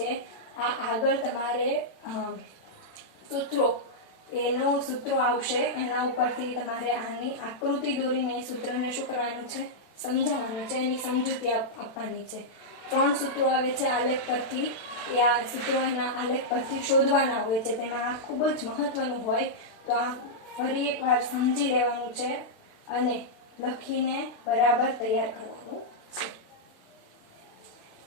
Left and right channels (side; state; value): right; late; 36 ms